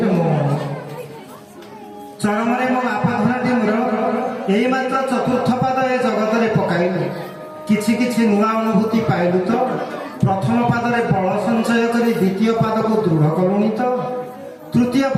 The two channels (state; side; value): identical; both; correlation 1.00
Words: ରେ ମୋ ମନ। ଚରମରେ ମୋ ବାପା ଧନଟି ମୋର ଏଇ ମାତ୍ର ଚତୁର୍ଥ ପାଦ ଏ ଜଗତରେ ପକାଇଲୁ। କିଛି କିଛି ନୂଆ ଅନୁଭୂତି ପାଇଲୁ ତ? ପ୍ରଥମ ପାଦରେ ବଳ ସଞ୍ଚୟ କରି ଦ୍ୱିତୀୟ ପାଦକୁ ଦୃଢ଼ କଲୁଣି ତ? ତୃତୀୟ